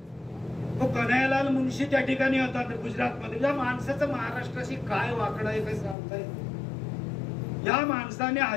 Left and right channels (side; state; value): right; drops out; at 6.0 s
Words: तो कन्हैयालाल मुंशी त्या ठिकाणी होता गुजरातमध्ये. या माणसाचं महाराष्ट्राशी काय वाकडं आहे काय सांगता येईल. या माणसाने